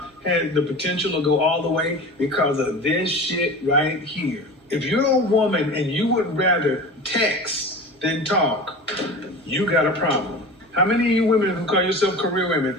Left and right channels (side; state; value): both; normal; correlation 0.34